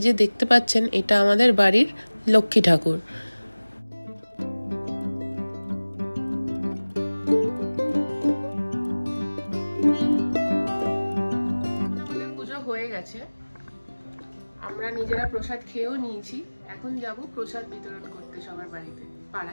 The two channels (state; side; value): inverted; both; correlation -1.00